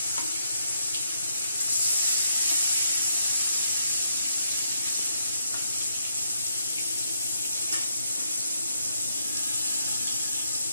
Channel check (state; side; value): inverted; both; correlation -0.76